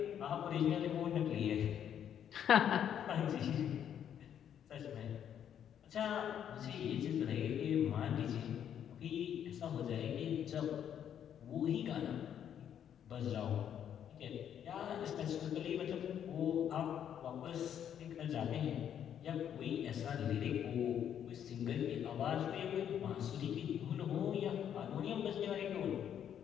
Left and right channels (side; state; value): right; quieter; 9.3 dB